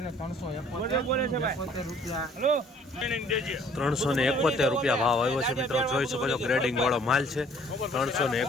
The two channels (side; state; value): both; normal; correlation 0.57